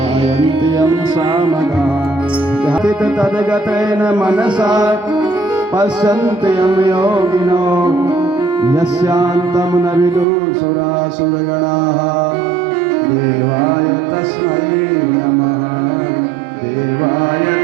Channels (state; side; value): drops out; left; at 10.2 s